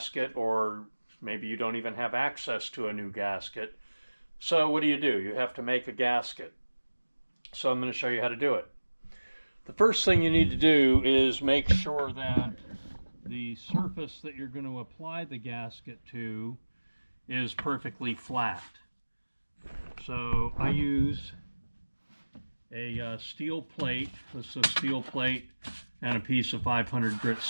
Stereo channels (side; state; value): both; inverted; correlation -1.00